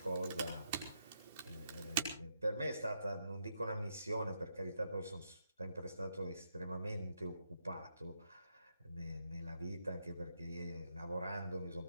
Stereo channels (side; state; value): both; inverted; correlation -0.79